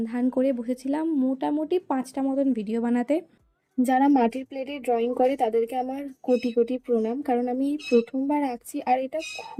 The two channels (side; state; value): both; identical; correlation 1.00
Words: ধান করে বসেছিলাম মোটামুটি 5টা মতন ভিডিও বানাতে। যারা মাটির প্লেটে ড্রয়িং করে তাদেরকে আমার কোটি কোটি প্রণাম, কারণ আমি প্রথমবার আঁকছি আর এটা